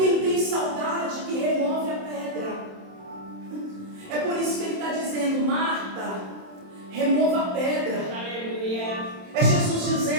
tem saudade que remove a pedra. É por isso que ele está dizendo: Marta, remova a pedra. É Jesus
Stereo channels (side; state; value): left; late; 27 ms